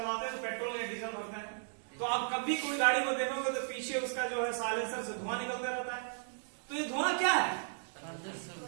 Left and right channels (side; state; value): left; silent; digital silence